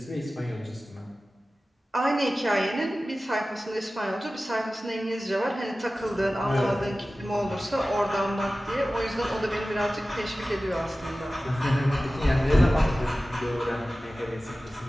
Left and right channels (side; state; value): both; normal; correlation 0.96